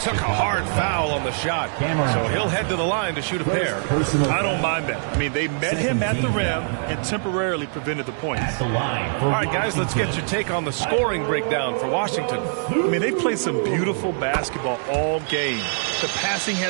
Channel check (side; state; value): left; silent; digital silence